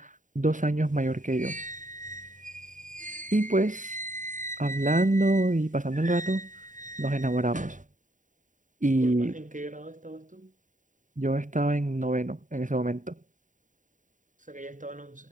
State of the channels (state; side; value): late; left; 0.37 ms